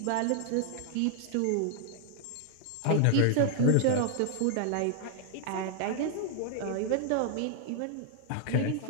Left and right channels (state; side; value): different; both; correlation 0.00